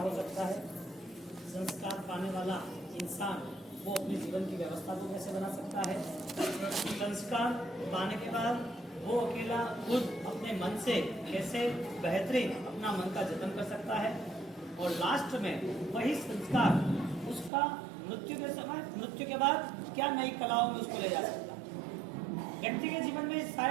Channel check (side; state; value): left; drops out; at 17.5 s